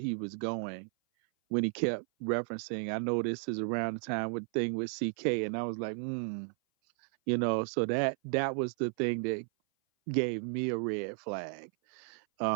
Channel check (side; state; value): left; silent; 55 dB below the other